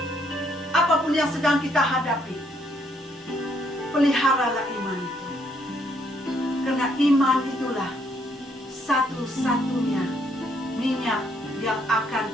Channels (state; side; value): normal; both; correlation 0.70